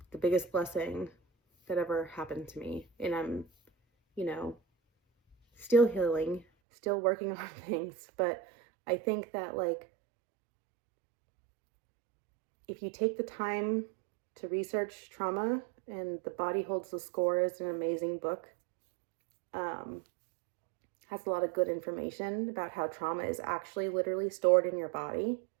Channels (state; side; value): drops out; left; at 6.5 s